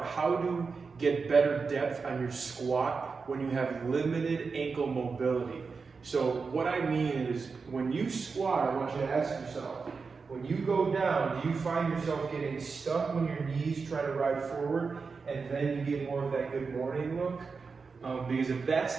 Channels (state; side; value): quieter; left; 4.9 dB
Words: how to get better depth on your squat when you have limited ankle mobility. So what I mean is, when you squat, I want you to ask yourself, when you go down, do you find yourself getting stuck when your knees try to ride forward and then you get more of that good morning look? Because if that's